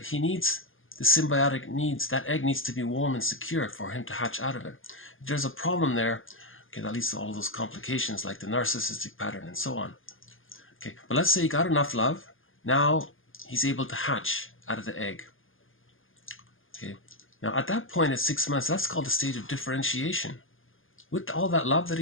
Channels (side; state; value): right; late; 0.59 ms